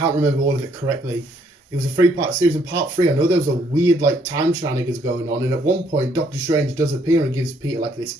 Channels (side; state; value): both; normal; correlation 0.68